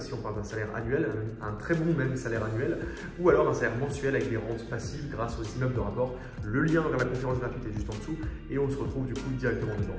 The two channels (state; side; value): identical; both; correlation 1.00